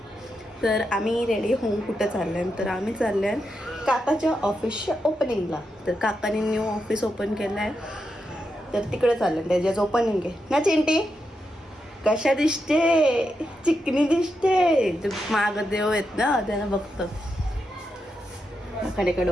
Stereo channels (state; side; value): normal; both; correlation 0.85